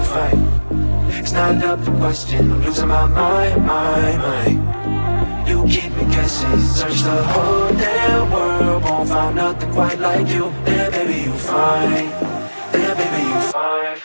fine. It's not up for question, I'm losing my mind. You keep me guessing, search the whole damn world, won't find nothing quite like you. Then baby, you fine. Then baby, you fine,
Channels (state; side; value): inverted; both; correlation -1.00